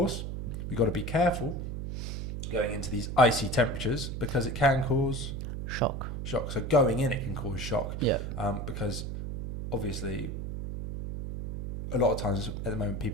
we've got to be careful going into these icy temperatures because it can cause... Shock. So going in, it can cause shock. Yeah. Because obviously, a lot of times at the moment,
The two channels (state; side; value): noise; right; hum, 4 dB below the sound